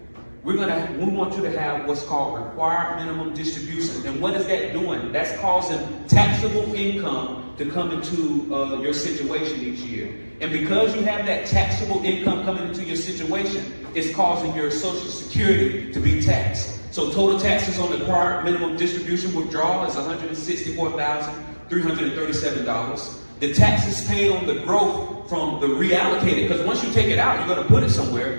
we want you to have what's called required minimum distribution. And what is that doing? That's causing taxable income to come into your situation each year. And because you have that taxable income coming into your situation, it's causing your Social Security to be taxed. So total taxes on the required minimum distribution withdrawal is $164,337. The taxes paid on the growth from the reallocated, because once you take it out, you're going to put it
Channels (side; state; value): both; inverted; correlation -1.00